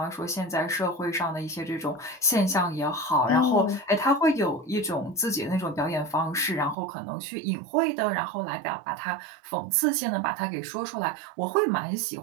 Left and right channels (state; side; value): drops out; left; at 6.8 s